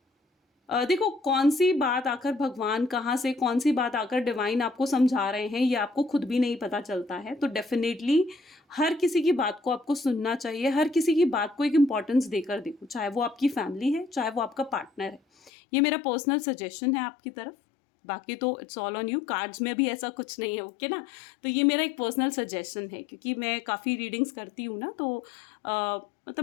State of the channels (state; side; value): drops out; right; at 15.5 s